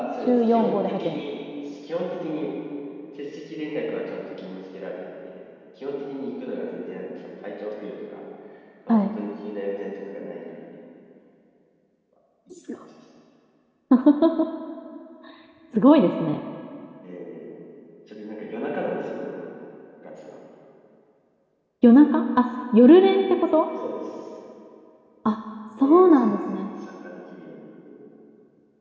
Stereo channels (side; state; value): both; identical; correlation 1.00